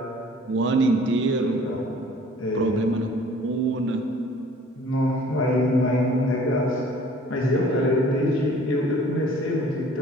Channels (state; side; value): normal; both; correlation 0.51